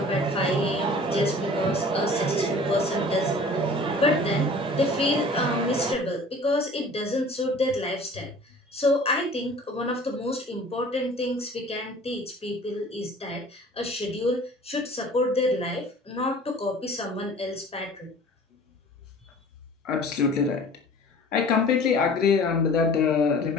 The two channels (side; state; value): both; normal; correlation 0.46